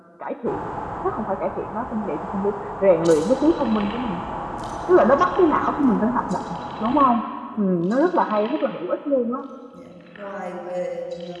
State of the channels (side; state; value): both; identical; correlation 1.00